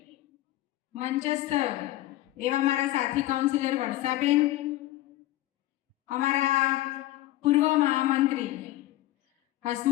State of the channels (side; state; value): right; quieter; 15.9 dB